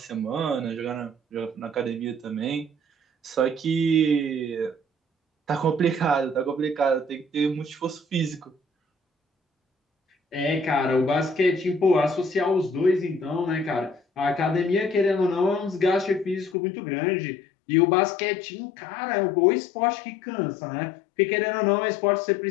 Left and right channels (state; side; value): drops out; right; at 16.6 s